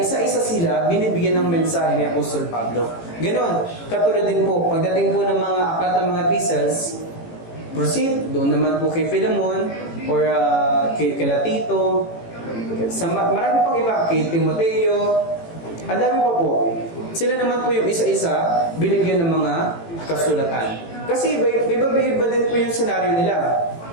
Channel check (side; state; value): right; late; 18 ms